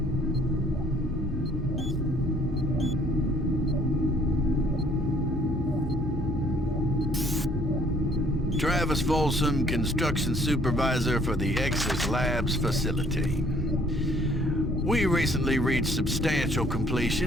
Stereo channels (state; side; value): normal; both; correlation 0.60